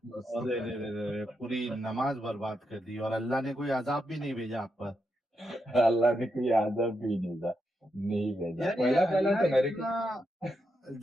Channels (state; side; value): normal; both; correlation 0.84